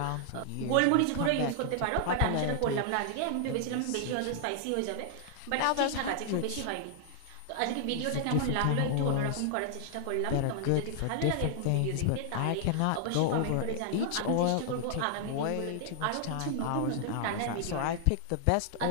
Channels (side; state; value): both; different; correlation 0.00